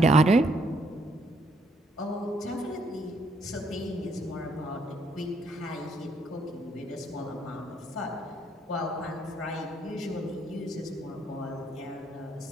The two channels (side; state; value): both; normal; correlation 0.70